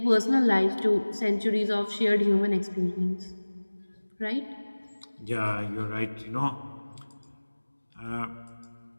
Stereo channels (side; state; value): both; inverted; correlation -1.00